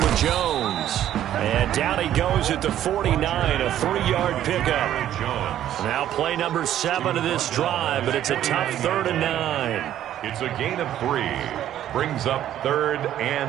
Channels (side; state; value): left; quieter; 11.7 dB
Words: Jones. And down he goes at the 49, a 3-yard pickup. Now play number 7 of this drive, but it's a tough 3rd and 9. It's a gain of 3. Brings up 3rd